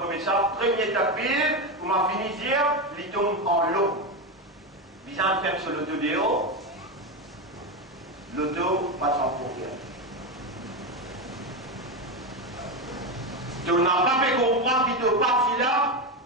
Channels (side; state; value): both; normal; correlation 0.13